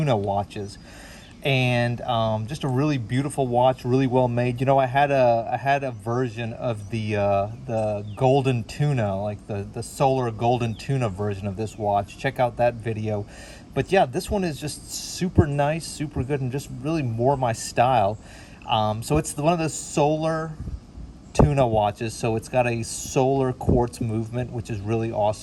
watches, and just a really beautiful watch, really well made. You know, I had a version of the golden tuna, like the solar golden tuna version of this watch. Check out that video. But yeah, this one is just super nice, super good, and just really more my style. So it's one of the Solar Tuna watches, so it's got a solar quartz movement, which is really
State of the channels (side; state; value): both; identical; correlation 1.00